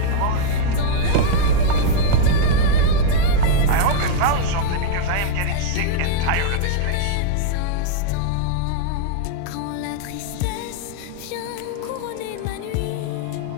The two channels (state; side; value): different; both; correlation -0.01